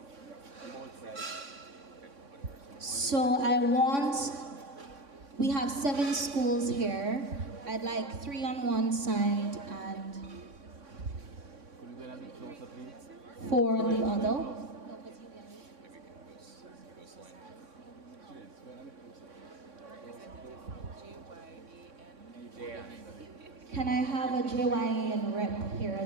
So we have 7 schools here. I'd like 3 on one side and 4 on the other. Can I have a JYAN rep here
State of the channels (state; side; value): late; left; 3.6 ms